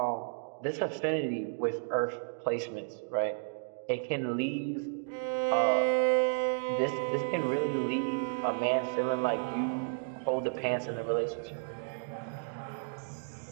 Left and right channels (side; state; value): left; silent; digital silence